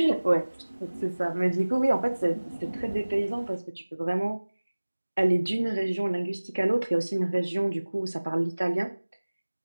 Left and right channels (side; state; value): both; inverted; correlation -1.00